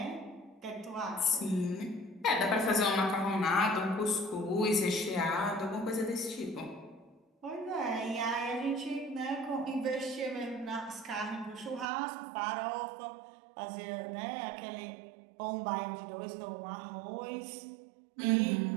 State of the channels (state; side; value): drops out; left; at 11.9 s